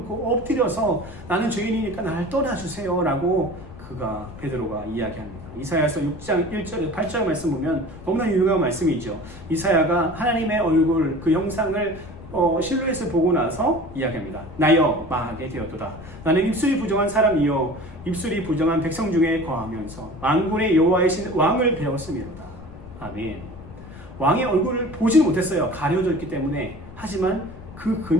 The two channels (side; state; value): left; noise; rumble, 16 dB below the sound